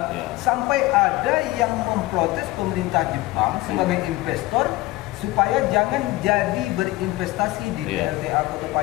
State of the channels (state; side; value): quieter; right; 19.1 dB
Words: sampai ada yang memprotes pemerintah Jepang sebagai investor supaya jangan jadi berinvestasi di PLTA Kota